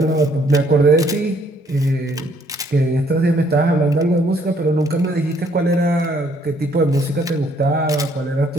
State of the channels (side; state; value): both; normal; correlation 0.65